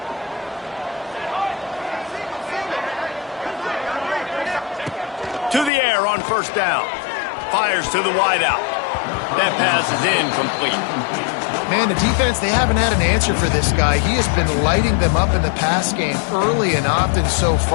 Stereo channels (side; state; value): right; drops out; at 5.7 s